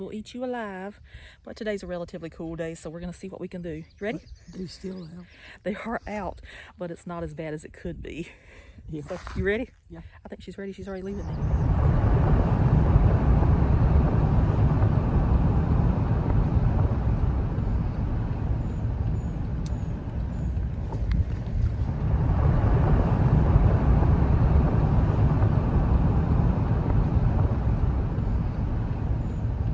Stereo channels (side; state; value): both; identical; correlation 1.00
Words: eat you alive. But today's a relatively cool day, so we're going to see what we can do. You ready? They're still out. They are out, but it's not as bad as it could be. Yeah. So, you ready? Yeah. I think she's ready. She's already leaving me.